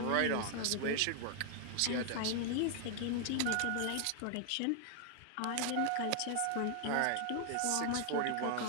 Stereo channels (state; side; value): different; both; correlation 0.00